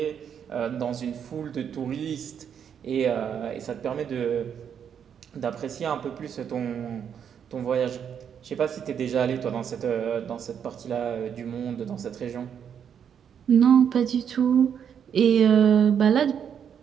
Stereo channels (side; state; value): left; quieter; 8.1 dB